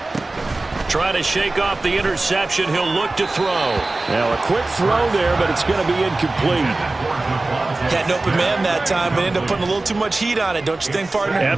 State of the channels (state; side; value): quieter; left; 3.1 dB